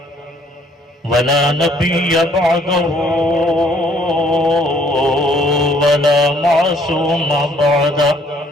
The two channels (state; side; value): normal; both; correlation 0.63